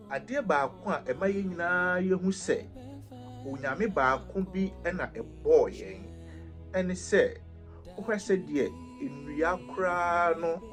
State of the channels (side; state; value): both; identical; correlation 1.00